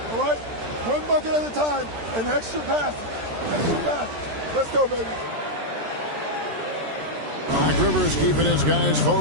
all right? One bucket at a time, and extra pass. Extra pass. Let's go, baby. Doc Rivers keeping his guys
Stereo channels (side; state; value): left; late; 13 ms